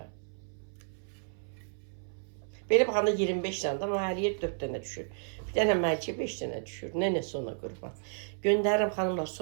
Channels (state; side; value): silent; left; 56 dB below the other